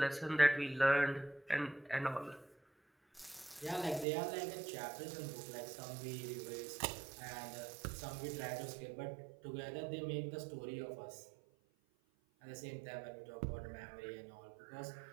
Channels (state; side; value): drops out; left; at 4.0 s